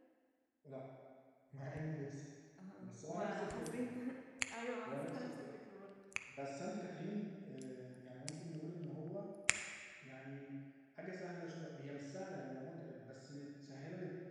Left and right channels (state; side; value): identical; both; correlation 1.00